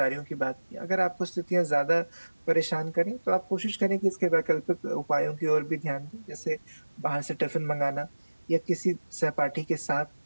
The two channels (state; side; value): inverted; both; correlation -1.00